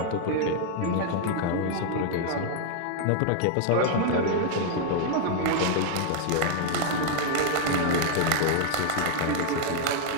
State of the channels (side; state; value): both; different; correlation 0.00